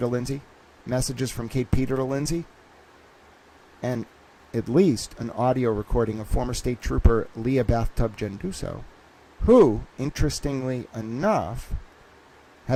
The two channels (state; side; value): identical; both; correlation 1.00